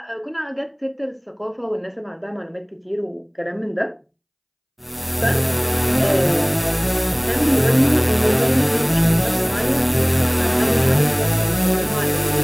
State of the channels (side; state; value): both; identical; correlation 1.00